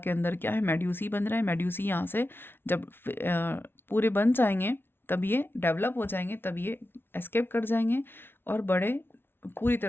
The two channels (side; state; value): right; late; 0.11 ms